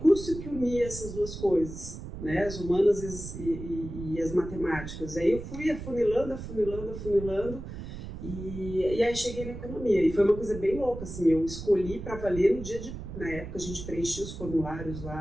que unia essas duas coisas, né? As humanas e as matemáticas. Aí eu fui afunilando. E aí cheguei na economia, e foi uma coisa bem louca, assim, eu escolhi para valer no dia na época a gente preenchia os formulários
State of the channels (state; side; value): noise; right; rumble, 10 dB below the sound